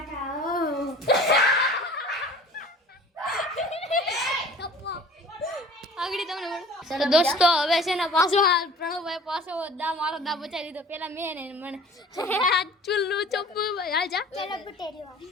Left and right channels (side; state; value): both; normal; correlation 0.45